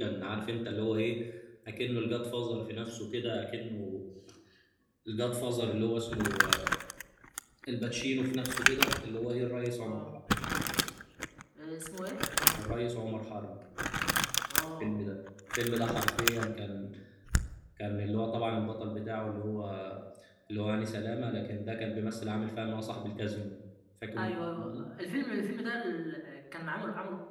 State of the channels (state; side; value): identical; both; correlation 1.00